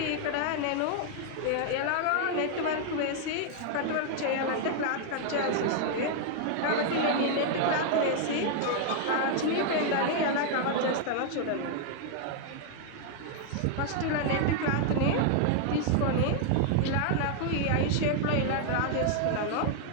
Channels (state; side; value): different; both; correlation 0.00